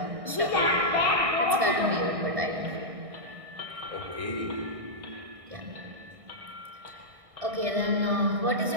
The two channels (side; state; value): left; late; 1.6 ms